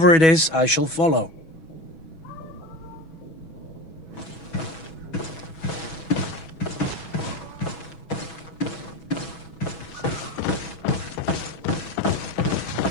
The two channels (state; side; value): late; right; 6.2 ms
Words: it is, I shall follow.